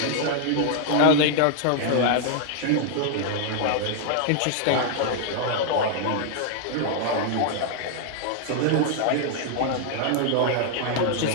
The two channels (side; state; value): both; different; correlation 0.00